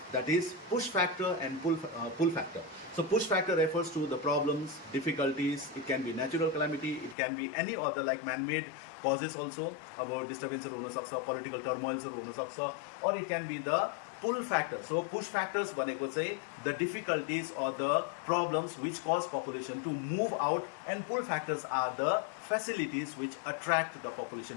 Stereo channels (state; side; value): drops out; right; at 7.2 s